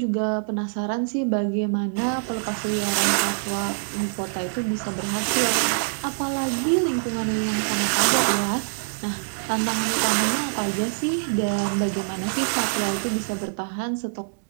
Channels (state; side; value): silent; left; digital silence